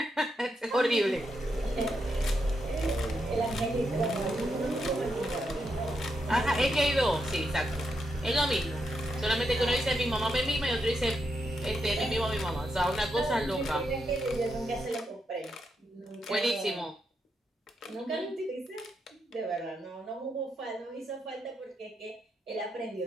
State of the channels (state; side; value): normal; both; correlation 0.82